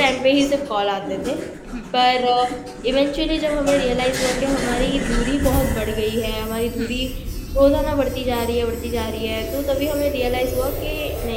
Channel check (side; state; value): both; identical; correlation 1.00